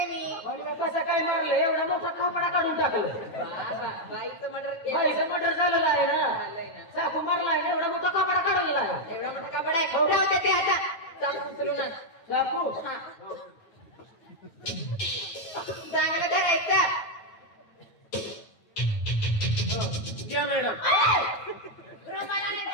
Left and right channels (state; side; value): late; right; 9.2 ms